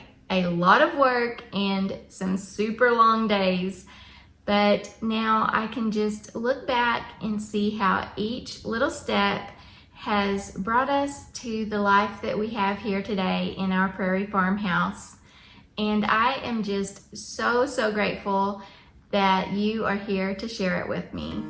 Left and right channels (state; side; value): identical; both; correlation 1.00